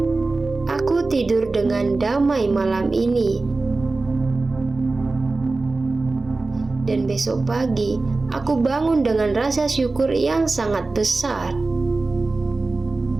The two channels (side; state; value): left; quieter; 3.5 dB